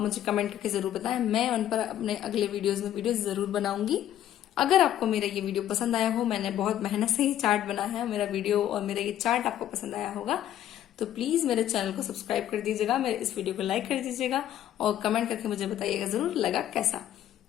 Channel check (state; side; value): quieter; right; 11.7 dB